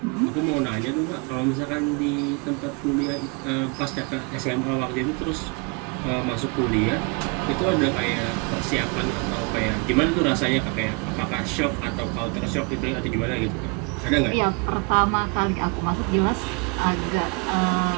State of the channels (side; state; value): left; quieter; 31.4 dB